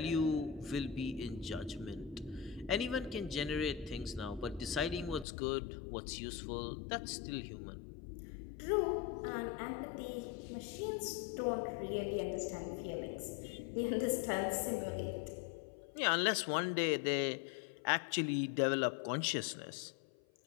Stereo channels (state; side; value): drops out; right; at 5.2 s